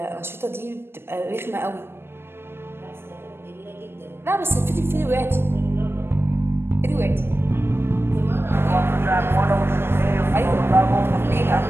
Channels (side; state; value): left; late; 0.11 ms